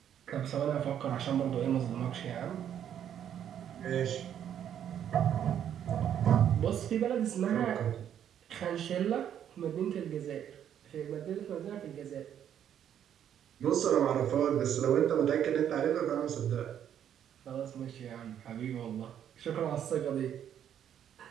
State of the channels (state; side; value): quieter; left; 9.7 dB